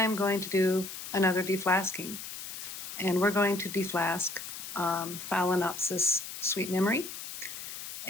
going to do another deflasking, and we're going to deflask Phal Sweet Memory,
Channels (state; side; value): noise; left; hiss, 9 dB below the sound